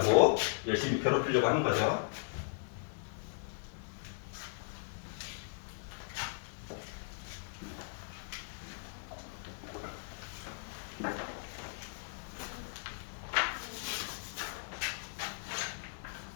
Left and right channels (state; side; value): silent; right; digital silence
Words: 열심히 괴롭히려고 하는 거죠.